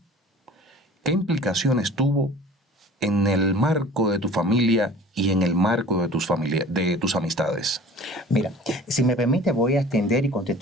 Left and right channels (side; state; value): both; normal; correlation 0.44